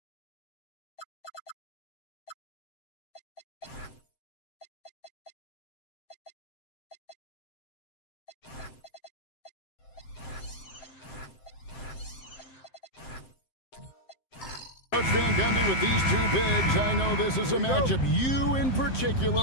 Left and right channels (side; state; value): right; late; 7.7 ms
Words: Coach Van Gundy, with these two bigs, I know this is a matchup you in particular